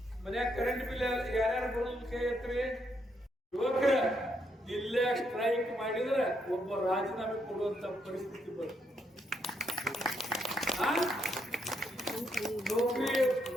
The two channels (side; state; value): both; normal; correlation 0.76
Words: ಮನ್ಯಾಗ ಕರೆಂಟ್ ಬಿಲ್ ಯಾರ್ಯಾರು ಬರೋದು ಕೈ ಎತ್ರಿ. ಯುವಕರ ಇಲ್ಲೇ ಸ್ಟ್ರೈಕ್ ಮಾಡಿದ್ರೆ ಒಬ್ಬ ರಾಜೀನಾಮೆ ಕೊಡುವಂತ ಪರಿಸ್ಥಿತಿ ಬರುತ್ತೆ.